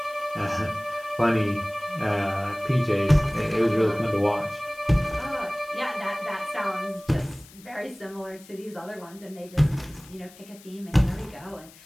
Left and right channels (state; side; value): noise; left; hiss, 22 dB below the sound